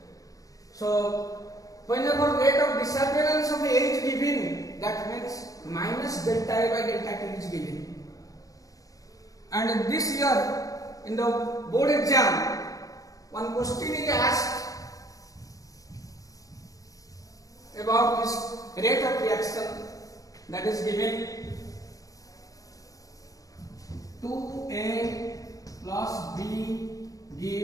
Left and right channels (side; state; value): right; late; 0.17 ms